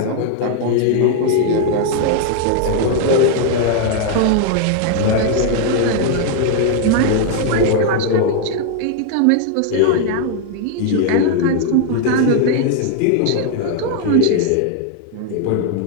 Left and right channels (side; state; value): both; different; correlation 0.00